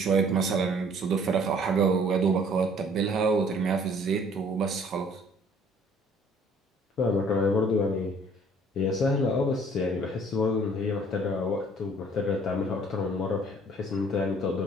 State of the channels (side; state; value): both; normal; correlation 0.56